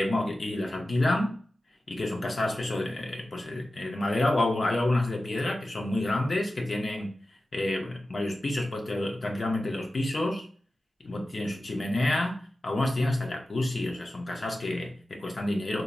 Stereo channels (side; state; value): both; normal; correlation 0.94